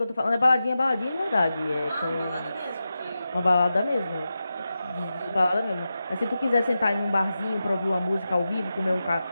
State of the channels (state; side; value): inverted; both; correlation -0.91